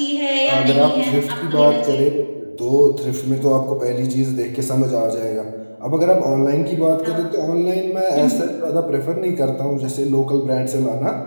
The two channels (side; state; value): both; inverted; correlation -1.00